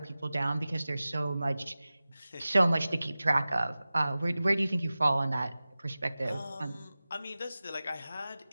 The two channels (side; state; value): both; inverted; correlation -0.97